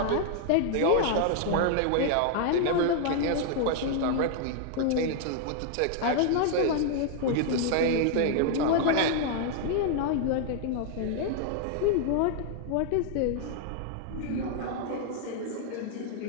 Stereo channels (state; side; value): different; both; correlation 0.00